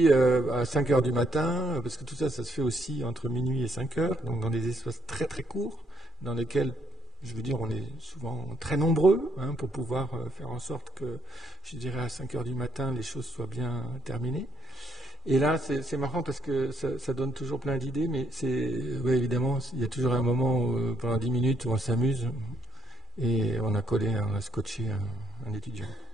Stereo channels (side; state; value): both; normal; correlation 0.72